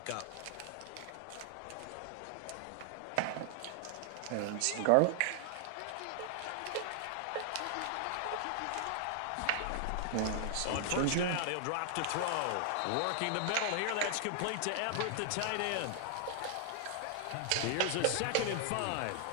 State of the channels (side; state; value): both; different; correlation 0.00